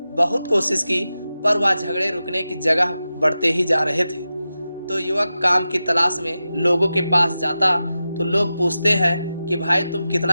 बहुत कोशिश की, पर वह झगड़े रुकने की जगह बढ़ते ही जा रहे थे। तो युवक काम की तलाश में लोगों के पास जाता तो लोग पूछते हैं कि भाई तुम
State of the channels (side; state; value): both; inverted; correlation -0.92